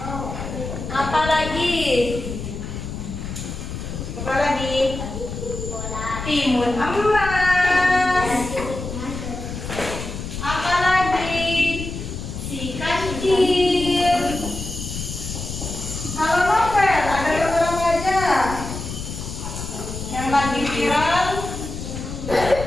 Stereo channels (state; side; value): noise; left; rumble, 7 dB below the sound